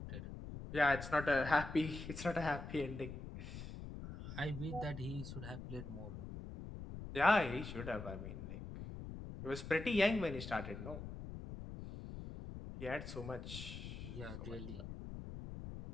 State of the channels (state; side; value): noise; left; rumble, 9 dB below the sound